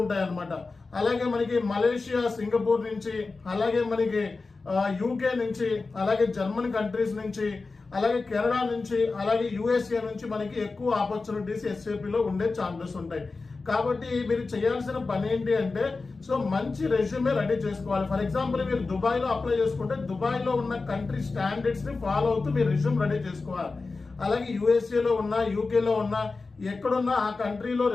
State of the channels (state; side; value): quieter; right; 3.9 dB